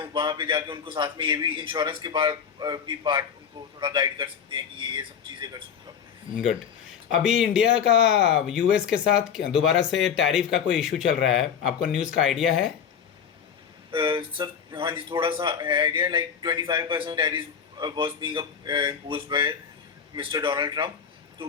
वहाँ पे जाके उनको साथ में ये भी इंश्योरेंस के भी पार्ट उनको थोड़ा गाइड कर सकते हैं कि ये सब चीज़ें कर सकते हो। गुड। अभी इंडिया का यूएस के साथ दोबारा से टैरिफ का कोई इशू चल रहा है, आपको न्यूज़ का आइडिया है? सर हाँ जी, थोड़ा सा है idea. Like 25% tariff was being imposed by mister Donald Trump, तो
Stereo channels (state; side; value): quieter; right; 7.4 dB